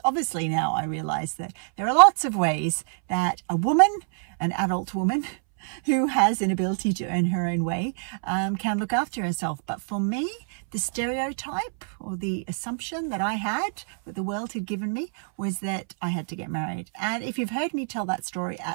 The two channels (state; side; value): silent; left; 61 dB below the other